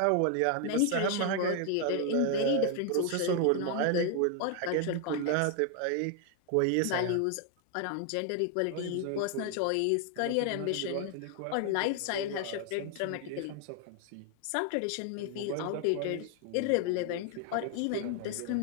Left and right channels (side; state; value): both; different; correlation 0.00